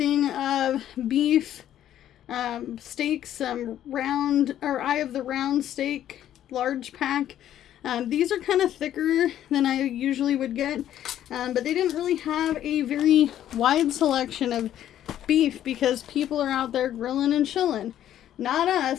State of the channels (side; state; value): right; quieter; 11.5 dB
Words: of beef steaks, some Eye of the Round steak, large pack. These are kind of thicker than I usually would get, but they didn't really have a very wide selection of beef because people are out there grilling and chilling. Not